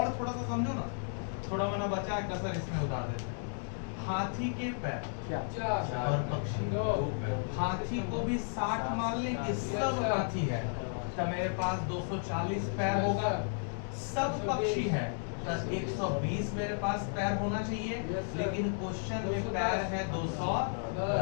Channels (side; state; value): right; silent; digital silence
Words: थोड़ा सा समझो ना, थोड़ा मना बचा है कसर इसमें उतार देते हैं। हाथी के पैर और पक्षी, हाथी को भी 60 मान लें कि सब हाथी है तो मेरे पास 240 पैर होगा। सब पक्षी है तो 120 मेरे पास पैर होना चाहिए, लेकिन क्वेश्चन में पैर है